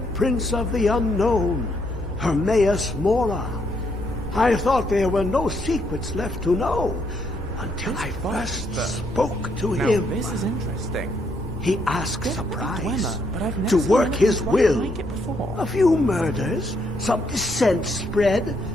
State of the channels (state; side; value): normal; both; correlation 0.74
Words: Prince of the Unknown, Hermaeus Mora. I thought there were no secrets left to know, until I first spoke to him. This is interesting. He asks a price Dwemer, but I've never to seen work anything his quite will. like it before. A few murders, some dissent spread,